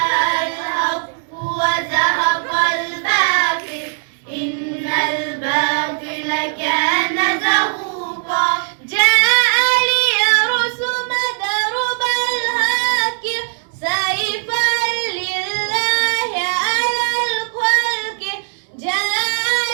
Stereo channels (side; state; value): left; silent; 60 dB below the other